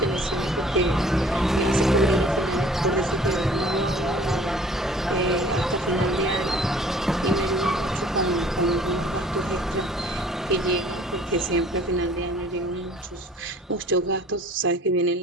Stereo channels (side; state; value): both; normal; correlation 0.52